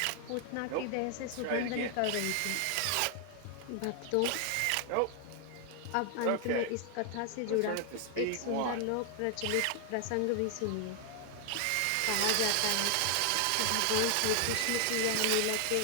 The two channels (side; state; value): both; different; correlation 0.00